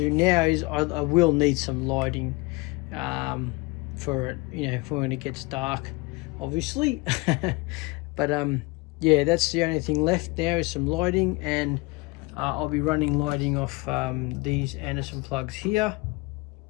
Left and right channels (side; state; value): right; quieter; 24.9 dB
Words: now is I will need some lighting for it, you know, for when it gets dark, obviously. But yeah, that's the only thing left now is some lighting, and I'll be running lighting off these Anderson plugs here,